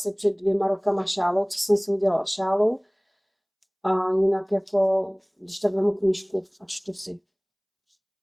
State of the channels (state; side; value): identical; both; correlation 1.00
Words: před 2 rokama šálou, co jsem si udělala šálu. A jinak jako, když tak vemu knížku a čtu si.